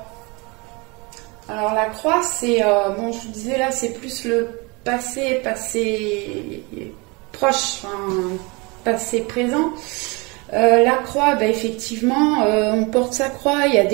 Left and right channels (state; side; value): quieter; left; 27.7 dB